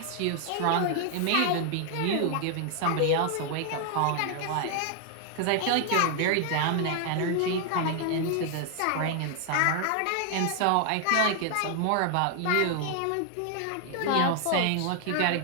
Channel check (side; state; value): both; different; correlation 0.00